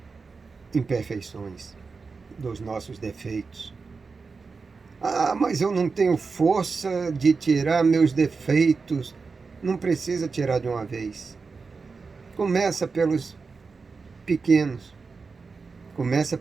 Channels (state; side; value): quieter; left; 4.6 dB